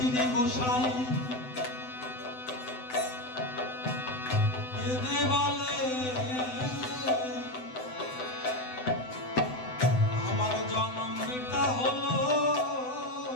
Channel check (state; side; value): late; right; 7.9 ms